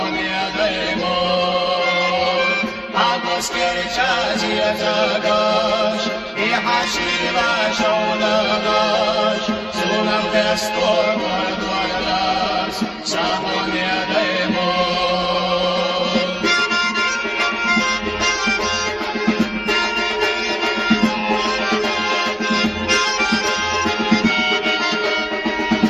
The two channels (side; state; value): both; identical; correlation 1.00